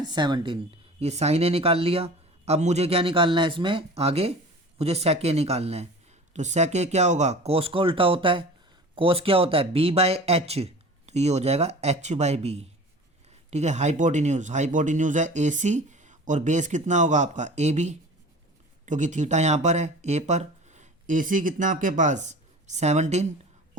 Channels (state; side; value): normal; both; correlation 0.39